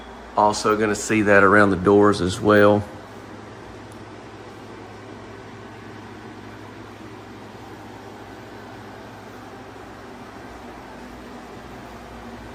Also going to see that around the doors as well.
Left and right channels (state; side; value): identical; both; correlation 1.00